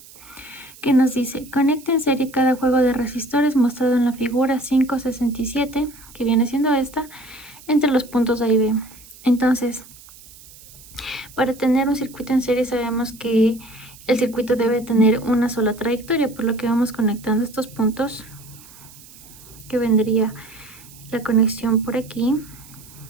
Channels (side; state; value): right; noise; hiss, 21 dB below the sound